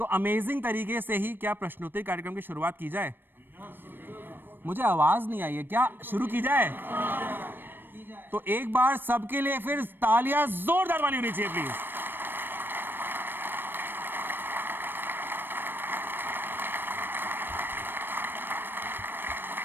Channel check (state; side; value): late; left; 0.096 ms